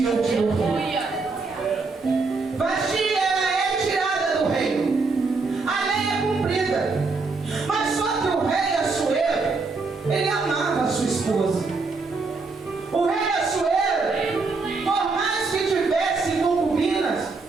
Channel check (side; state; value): left; quieter; 4.1 dB